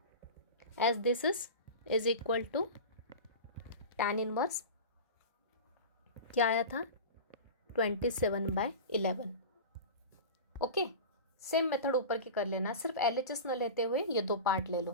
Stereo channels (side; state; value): both; inverted; correlation -0.30